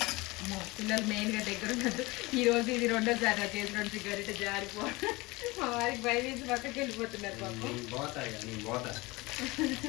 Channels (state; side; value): quieter; right; 22.8 dB